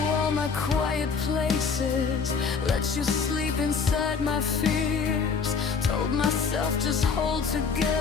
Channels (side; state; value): right; quieter; 5.4 dB